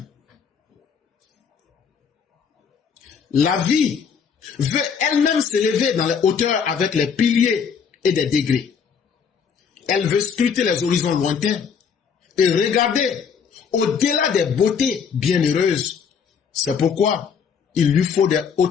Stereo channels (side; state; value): right; quieter; 6.6 dB